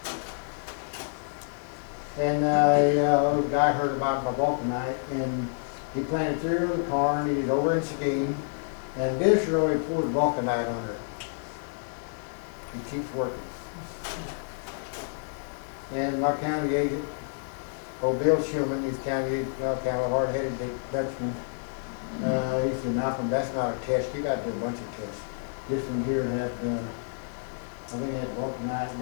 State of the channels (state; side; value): silent; right; digital silence